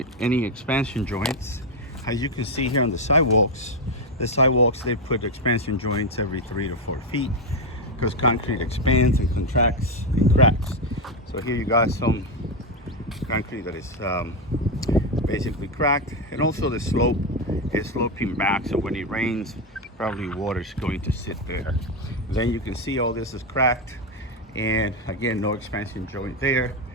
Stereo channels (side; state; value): both; normal; correlation 0.08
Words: any expansion joints. As you can see here on the sidewalks they put expansion joints every 3 to 4 feet because concrete expands and contracts and cracks. So here you got some concrete that is basically cracked, and also the slope is sloping back, so when it rains probably water is going to sit there. Then you can see all this is cracked, and again, no expansion joint there,